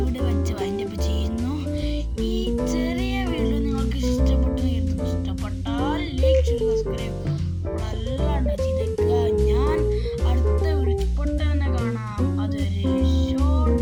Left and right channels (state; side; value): identical; both; correlation 1.00